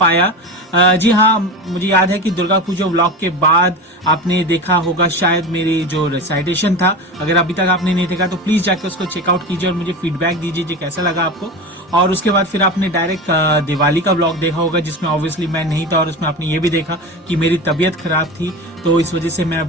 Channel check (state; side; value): normal; both; correlation 0.27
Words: जी हाँ, मुझे याद है कि दुर्गा पूजा व्लॉग के बाद आपने देखा होगा शायद मेरी जो रिसाइटेशन था। अगर अभी तक आपने नहीं देखा तो प्लीज जाकर उसको चेकआउट कीजिए और मुझे फीडबैक दीजिए कि कैसा लगा आपको। और उसके बाद फिर आपने डायरेक्ट दिवाली का व्लॉग देखा होगा जिसमें ऑब्वियसली मैं नहीं था, और उसमें आपने ये भी देखा कि मेरी तबीयत खराब थी, तो इस वजह से मैं